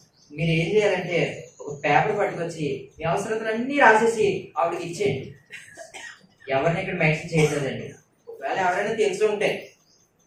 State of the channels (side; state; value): both; identical; correlation 1.00